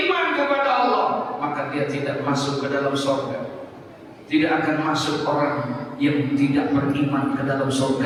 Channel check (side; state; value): both; identical; correlation 1.00